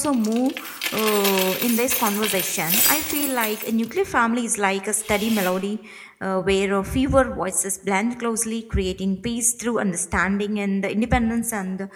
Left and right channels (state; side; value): identical; both; correlation 1.00